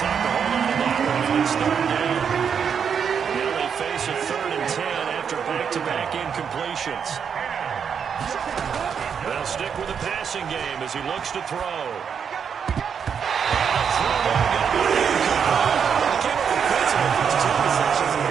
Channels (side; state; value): left; quieter; 7.1 dB